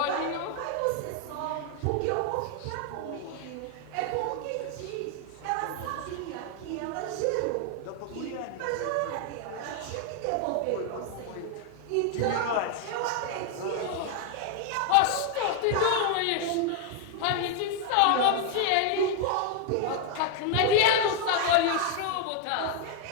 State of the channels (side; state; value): both; different; correlation 0.00